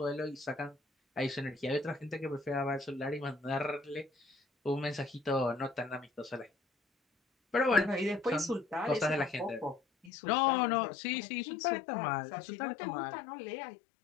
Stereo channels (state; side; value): drops out; right; at 10.1 s